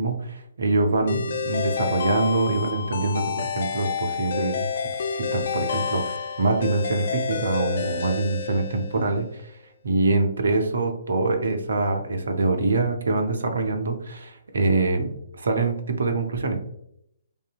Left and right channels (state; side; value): inverted; both; correlation -0.67